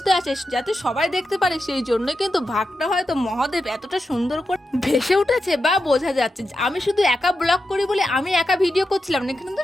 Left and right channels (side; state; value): both; normal; correlation 0.89